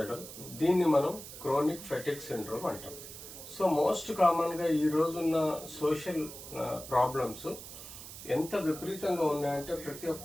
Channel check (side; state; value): right; noise; hiss, 13 dB below the sound